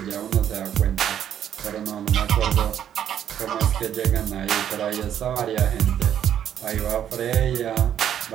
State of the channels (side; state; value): left; quieter; 9.9 dB